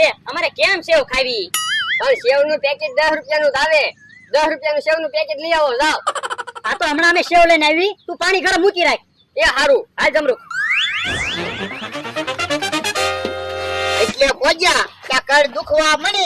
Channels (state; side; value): identical; both; correlation 1.00